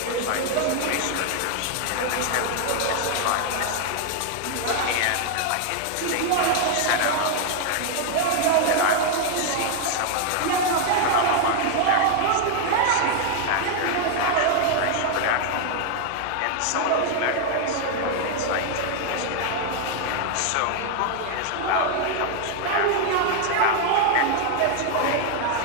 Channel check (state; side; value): different; both; correlation 0.00